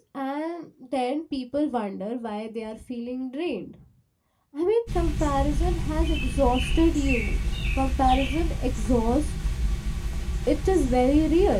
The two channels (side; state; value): both; identical; correlation 1.00